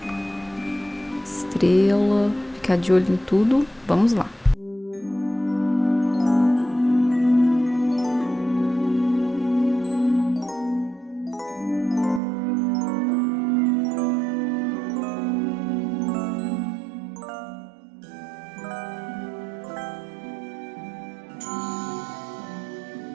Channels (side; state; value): left; drops out; at 12.2 s